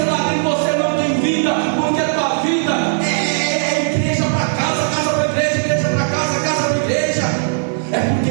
ah, em você não tem vida, porque a tua vida é igreja para casa, casa para igreja, igreja para casa, casa para igreja. É porque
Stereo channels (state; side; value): silent; left; digital silence